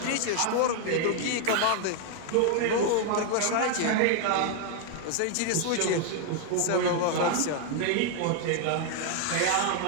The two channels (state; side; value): different; both; correlation 0.00